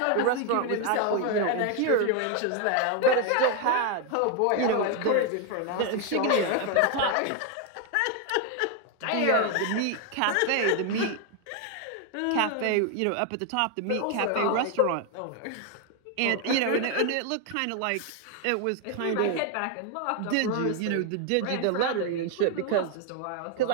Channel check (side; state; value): both; different; correlation 0.01